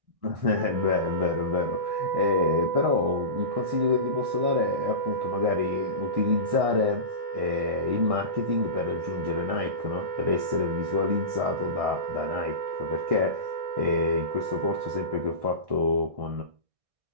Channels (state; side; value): late; left; 1.6 ms